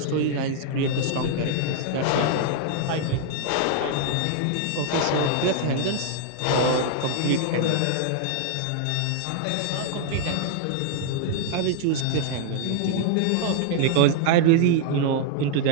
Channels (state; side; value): different; both; correlation -0.01